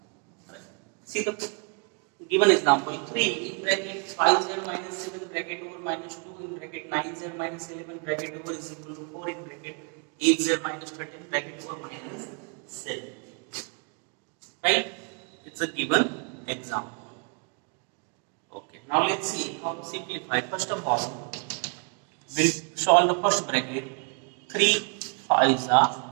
Right. See the given example 3 in bracket 5z minus 7 bracket over minus 2 in bracket 9z minus 11 bracket over is equal to 4 in bracket 8z minus 13 bracket over minus 7. Right? It's a given example. Okay, now let's see how to simplify. First of all, we'll solve the first bracket. 3 5s are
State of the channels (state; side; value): quieter; left; 38.9 dB